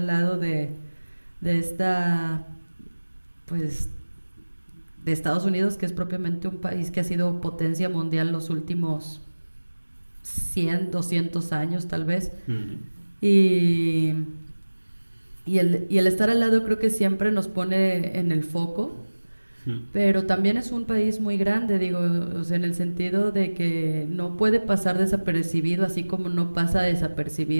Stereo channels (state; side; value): inverted; both; correlation -1.00